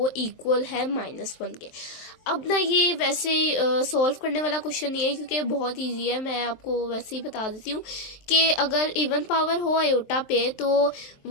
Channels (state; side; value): late; right; 23 ms